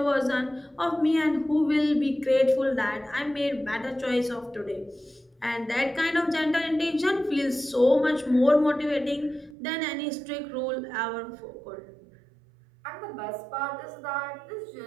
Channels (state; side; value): drops out; left; at 9.6 s